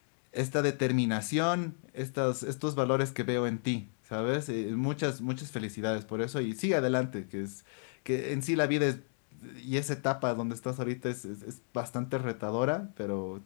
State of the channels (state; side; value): silent; right; digital silence